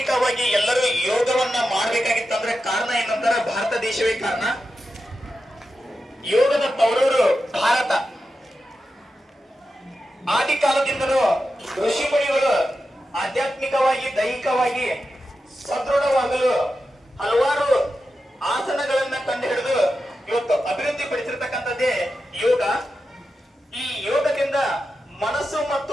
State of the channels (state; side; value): normal; both; correlation 0.90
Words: ಎಲ್ಲರೂ ಯೋಗವನ್ನ ಮಾಡ್ಬೇಕಾಗಿತ್ತಂದ್ರೆ ಕಾರಣ ಏನಂದ್ರೆ ಭಾರತ ದೇಶವೇ ಕಾರಣ. ಯೋಗದ ತವರೂರು ಭಾರತ. ಆದಿ ಕಾಲದಿಂದಲೂ ಋಷಿ ಮುನಿಗಳು ಆಧ್ಯಾತ್ಮಿಕವಾಗಿ ದೈಹಿಕವಾಗಿ ಸದೃಢವಾಗಲು ಹಲವಾರು ಆಸನಗಳನ್ನ ಕಂಡು ಹಿಡಿದು ಇವತ್ತು ಅಭಿವೃದ್ಧಿ ಪಡಿಸಿರ್ತಕ್ಕಂಥದ್ದೇ ಯೋಗ. ಈ ಯೋಗದಿಂದ ಮನಸ್ಸು